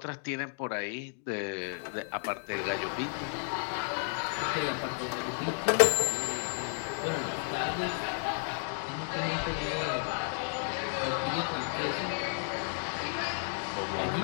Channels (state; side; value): silent; right; 56 dB below the other